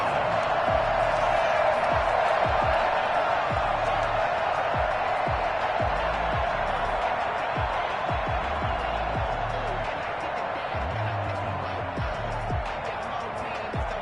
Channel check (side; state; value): both; identical; correlation 1.00